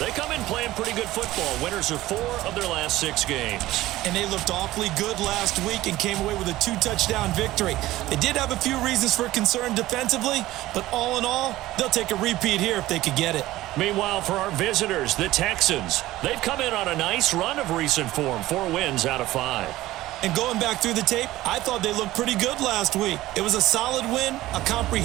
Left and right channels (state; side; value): quieter; left; 16.4 dB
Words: come in playing pretty good football. Winners of 4 of their last 6 games. And they looked awfully good last week and came away with a 2-touchdown victory. They did have a few reasons for concern defensively, but all in all, they'll take a repeat here if they could get it. Meanwhile, for our visitors, the Texans, they've come in on a nice run of recent form, 4 wins out of 5. And going back through the tape, I thought they looked pretty good last week. It was a solid win, a